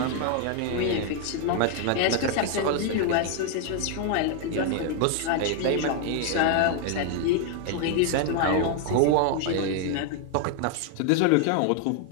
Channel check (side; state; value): both; different; correlation 0.00